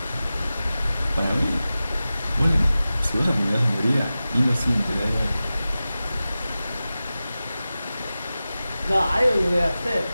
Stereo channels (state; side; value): inverted; both; correlation -0.95